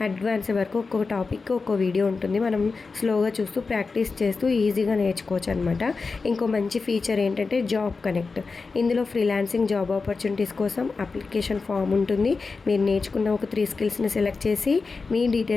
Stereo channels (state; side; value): quieter; right; 4.3 dB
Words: అడ్వాన్స్ వరకు ఒక్కొక్క టాపిక్ ఒక్కో వీడియో ఉంటుంది. మనం స్లోగా చూస్తూ ప్రాక్టీస్ చేస్తూ ఈజీగా నేర్చుకోవచ్చు అనమాట. ఇంకో మంచి ఫీచర్ ఏంటంటే జాబ్ కనెక్ట్. ఇందులో ఫ్రీలాన్సింగ్ జాబ్ ఆపర్చునిటీస్ కోసం అప్లికేషన్ ఫామ్ ఉంటుంది. మీరు నేర్చుకున్న ఒక 3 స్కిల్స్ని సెలెక్ట్ చేసి మీ